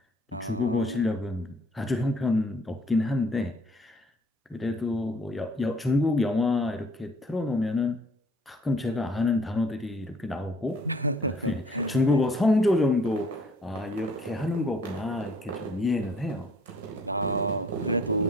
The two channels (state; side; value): normal; both; correlation 0.58